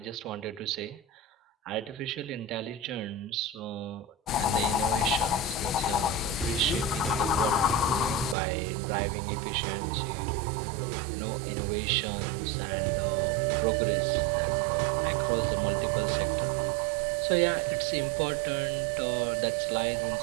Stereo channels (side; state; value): left; drops out; at 8.3 s